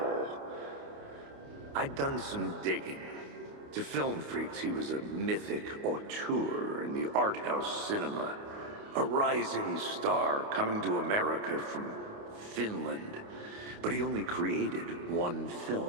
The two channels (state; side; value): late; left; 28 ms